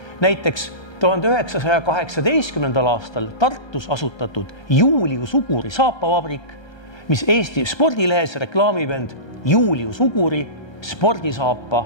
Näiteks 1918. aastal Tartus asutatud Julius Uguri saapavabrik, mis Eesti spordilehes reklaamib end Julius Uguri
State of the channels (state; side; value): late; right; 1.3 ms